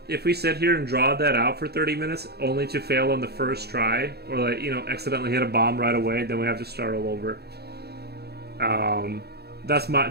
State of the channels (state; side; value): late; left; 0.47 ms